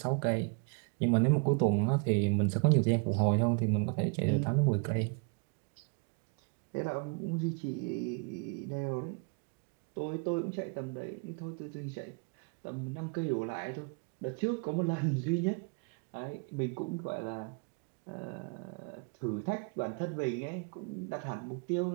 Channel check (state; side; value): quieter; left; 36.0 dB